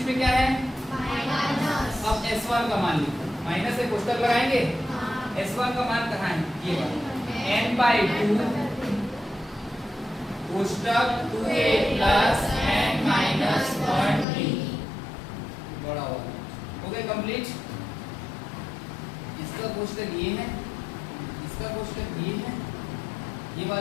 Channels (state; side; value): drops out; right; at 14.2 s